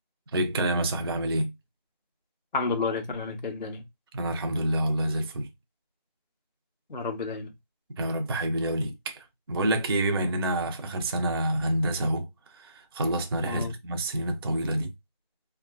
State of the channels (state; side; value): inverted; both; correlation -0.66